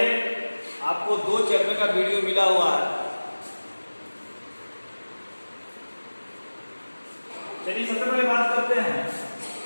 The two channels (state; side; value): inverted; both; correlation -1.00